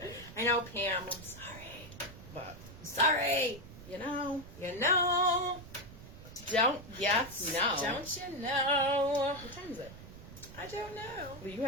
it. I know, Pam, I'm sorry. But I'm sorry. You know. Don't you know? What time is it? I don't know. Well, you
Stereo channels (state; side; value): noise; right; rumble, 16 dB below the sound